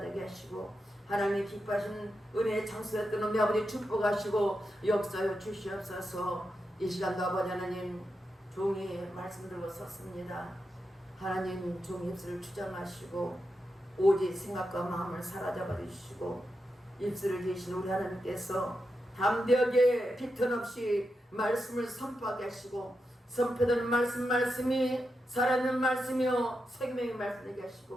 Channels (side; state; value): both; normal; correlation 0.87